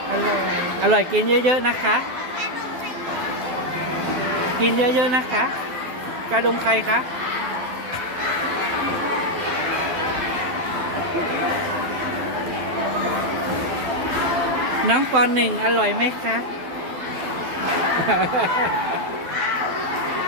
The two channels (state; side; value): late; left; 12 ms